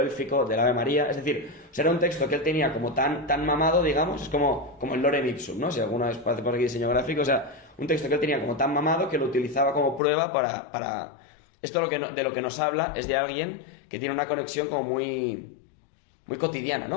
del Ave María. Es decir, o sea, era un texto que él tenía como tan mamado, digamos, es como el Lorem Ipsum, ¿no? Si alguna vez hace por aquí diseño gráfico, o sea, un texto que él tenía como tan mamado que lo utilizaba como prueba para... Esto de lo que nos habla es de alguien que tiene una conexión como muy cotidiana,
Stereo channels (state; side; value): drops out; right; at 10.0 s